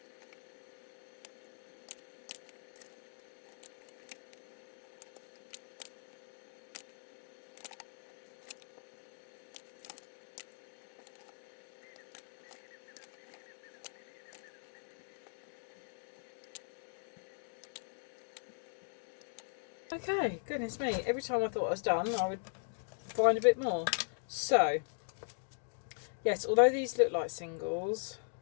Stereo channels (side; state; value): right; silent; digital silence